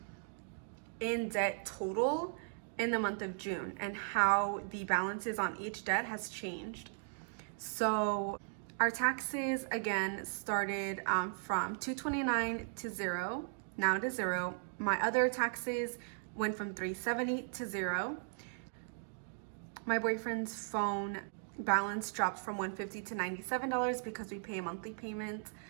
in debt total in the month of June and how the balances on each debt has changed. So our taxes again started from $229 to $0, now to $0. My other taxes went from $370 to $0. My boyfriend's phone balance dropped from $150 to $97 because we pay a monthly payment.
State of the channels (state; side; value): silent; left; digital silence